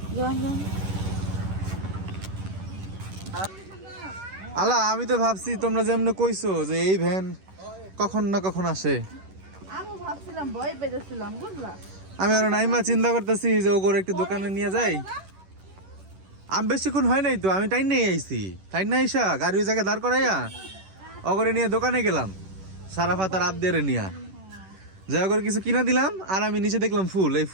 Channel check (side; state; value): left; late; 11 ms